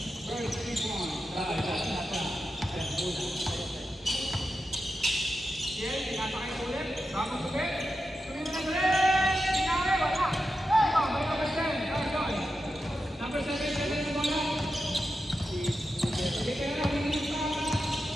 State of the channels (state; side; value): normal; both; correlation 0.89